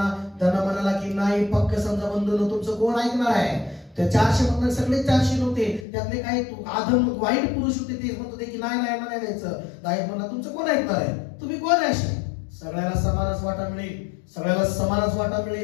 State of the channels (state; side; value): drops out; right; at 5.9 s